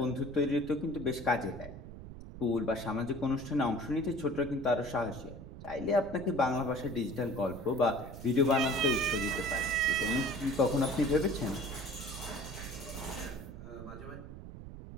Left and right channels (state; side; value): noise; right; rumble, 12 dB below the sound